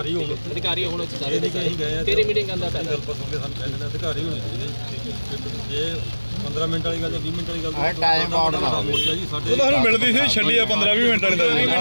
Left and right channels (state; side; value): inverted; both; correlation -1.00